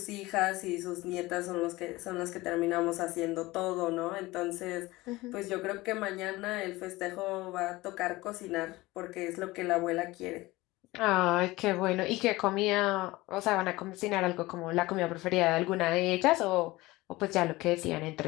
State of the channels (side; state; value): right; quieter; 20.0 dB